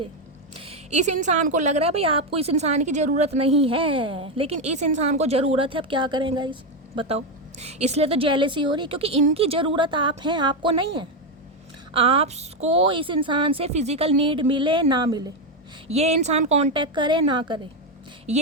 इस इंसान को लग रहा है भाई आपको इस इंसान की ज़रूरत नहीं है, लेकिन इस इंसान को ज़रूरत है। अब क्या करेंगे इस, बताओ। इसलिए तो जेलेसी हो रही है क्योंकि इनकी ज़रूरत आप हैं, आपको नहीं है। आपको इस इंसान से फिज़िकल नीड मिले ना मिले, ये इंसान कांटेक्ट करे ना करे,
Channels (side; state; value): both; normal; correlation 0.08